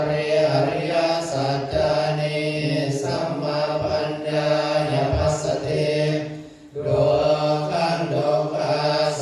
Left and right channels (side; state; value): both; identical; correlation 1.00